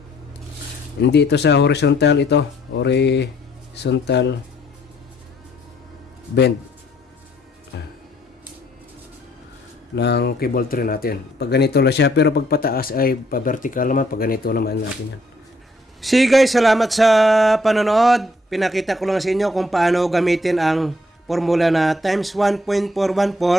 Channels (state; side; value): normal; both; correlation 0.67